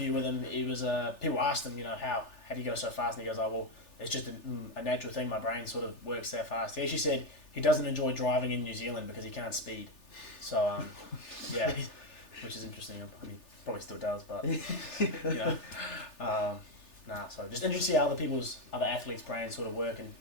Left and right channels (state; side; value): late; right; 3.4 ms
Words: with him, he was, people asked him, how do you go so fast, and he goes, oh, well, it's just a natural thing, my brain sort of works that fast. He actually said he doesn't enjoy driving in New Zealand because he can't speed, so, yeah, which is interesting. I mean, probably still does, but, so just interesting to see how other athletes' brains sort of work and